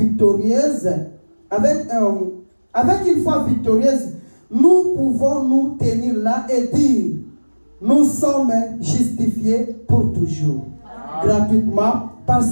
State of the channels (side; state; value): both; inverted; correlation -1.00